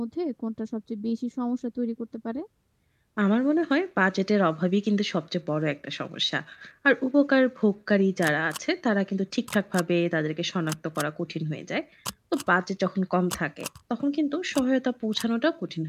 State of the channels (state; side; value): identical; both; correlation 1.00